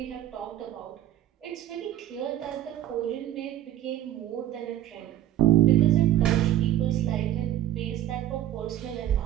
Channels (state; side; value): quieter; left; 12.9 dB